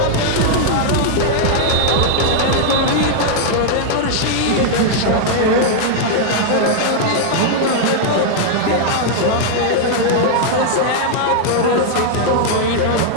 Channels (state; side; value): different; both; correlation -0.01